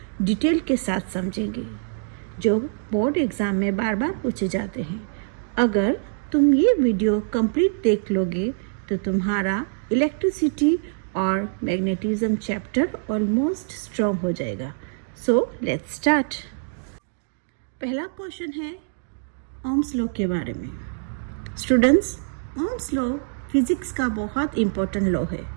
डिटेल के साथ समझेंगे जो बोर्ड एग्जाम में बार बार पूछे जाते हैं। अगर तुम ये वीडियो कंप्लीट देख लोगे तो तुम्हारा इलेक्ट्रिसिटी और मैग्नेटिज्म चैप्टर ऑलमोस्ट स्ट्रॉन्ग हो जाएगा। So let's start. पहला क्वेश्चन है ओम्स लॉ के बारे में। स्टूडेंट्स, ओम्स लॉ फिजिक्स का बहुत इम्पोर्टेंट लॉ है।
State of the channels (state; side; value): silent; left; digital silence